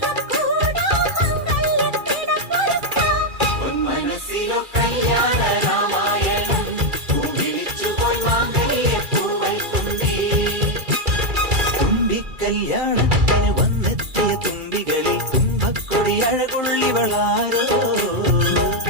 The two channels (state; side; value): late; left; 2.3 ms